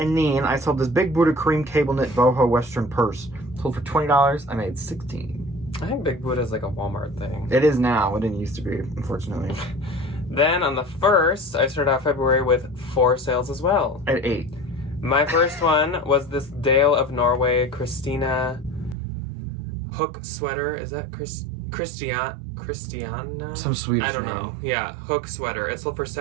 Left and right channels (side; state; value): left; drops out; at 18.9 s